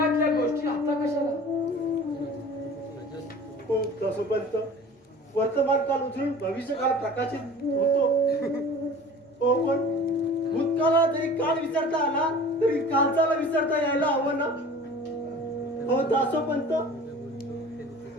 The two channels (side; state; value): both; normal; correlation 0.42